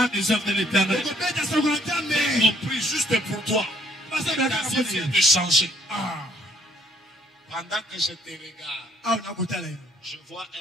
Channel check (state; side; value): normal; both; correlation 0.65